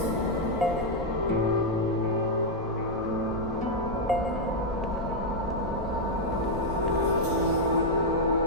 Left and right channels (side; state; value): both; normal; correlation -0.02